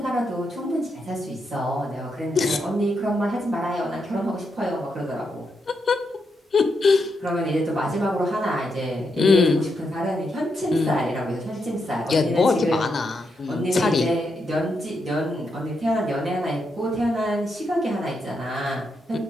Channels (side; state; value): both; normal; correlation 0.82